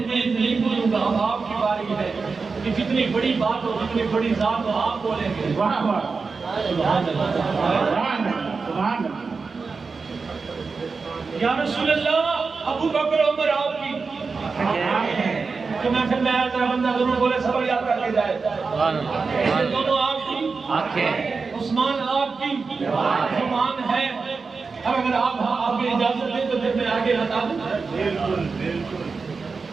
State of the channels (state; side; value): quieter; left; 4.6 dB